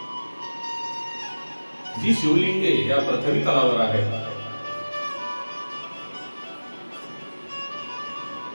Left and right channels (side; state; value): both; inverted; correlation -1.00